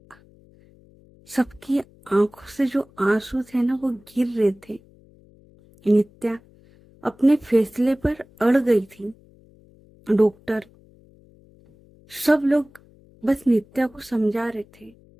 सबकी आंखों से जो आंसू थे ना वो गिर रहे थे। नित्या अपने फैसले पर अड़ गई थी। डॉक्टर सब लोग बस नित्या को समझा रहे थे।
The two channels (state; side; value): noise; left; hum, 28 dB below the sound